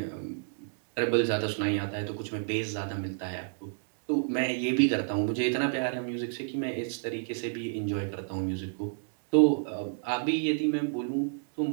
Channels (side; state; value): left; silent; digital silence